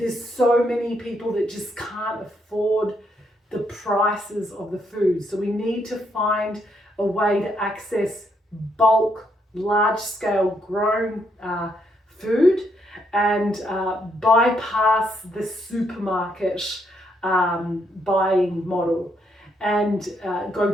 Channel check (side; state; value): both; normal; correlation 0.75